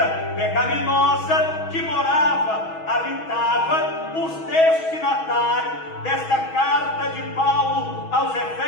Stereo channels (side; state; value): right; late; 6.2 ms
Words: pecaminosa, que morava, habitava os destinatários desta carta de Paulo aos